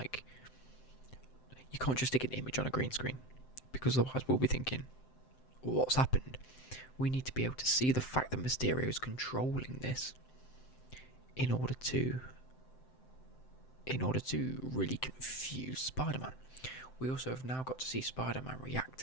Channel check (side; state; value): right; late; 7.7 ms